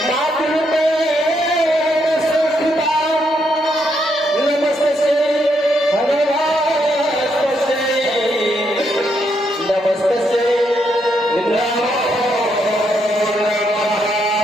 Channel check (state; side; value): normal; both; correlation 0.77